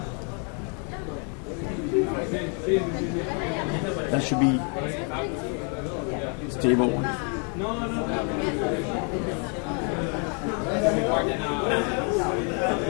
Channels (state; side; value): quieter; right; 38.9 dB